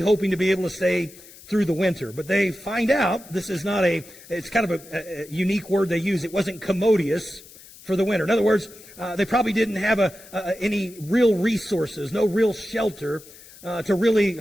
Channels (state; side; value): noise; left; hiss, 20 dB below the sound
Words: to be able to stay through the winter. But they find out this is not it's kind of a unique word they use. It wasn't commodious for the winter. In other words, they probably didn't have any real resources, no real shelter to really